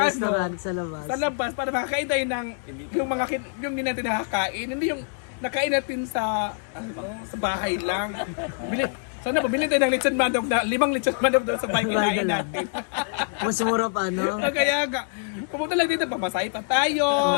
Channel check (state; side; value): silent; right; 61 dB below the other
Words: sa labas. sa labas para makakain tayo ng yung hindi natin nakakain, hindi yung nakain natin sa sa bahay lang. Sana bumili tayo ng lechon manok na 5 lechon manok doon sa bahay kinain natin. Mas mura pa, no? Kaya nga, pumunta lang dito, pamasahe pa tayo.